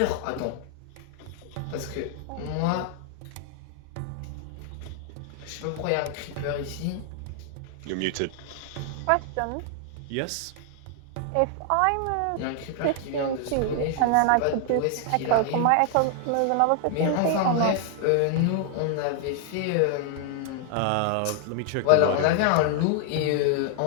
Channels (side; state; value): both; different; correlation 0.00